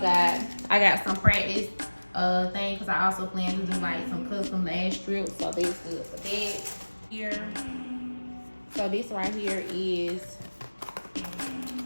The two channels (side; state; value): both; inverted; correlation -1.00